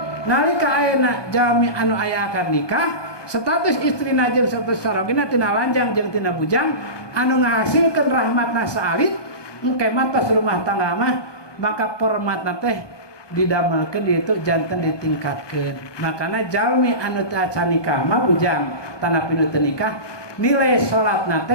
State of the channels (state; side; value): late; right; 1.2 ms